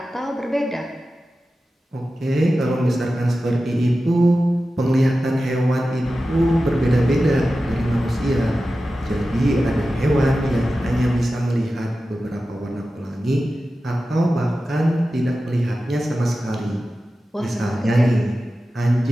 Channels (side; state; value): both; normal; correlation 0.94